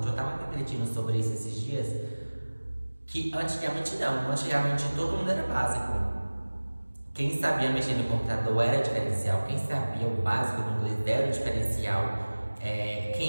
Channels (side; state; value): both; inverted; correlation -1.00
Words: Eu estava refletindo sobre isso esses dias, que antigamente não. Antigamente todo mundo era básico. Quem sabia mexer no computador era diferencial. Quem sabia o básico do inglês era o diferencial.